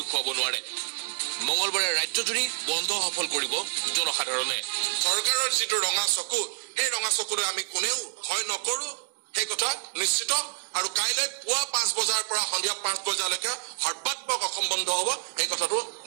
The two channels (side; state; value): left; silent; digital silence